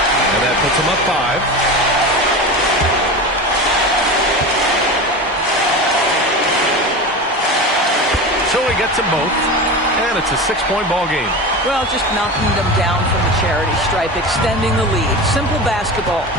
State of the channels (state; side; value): normal; both; correlation 0.27